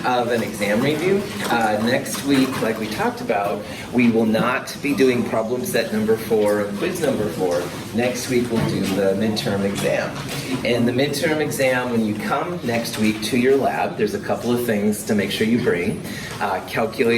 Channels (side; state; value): both; identical; correlation 1.00